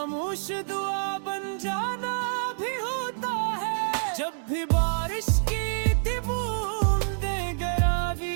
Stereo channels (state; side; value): silent; left; digital silence